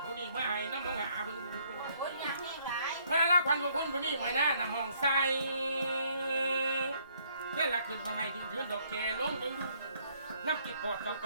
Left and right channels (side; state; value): both; inverted; correlation -0.67